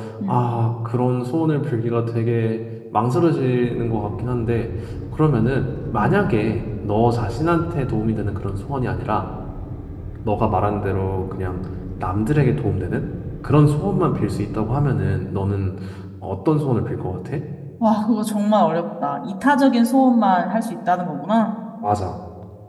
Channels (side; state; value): both; identical; correlation 1.00